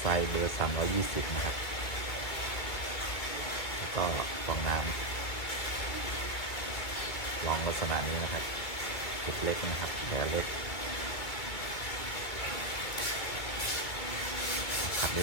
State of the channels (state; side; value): late; right; 2.4 ms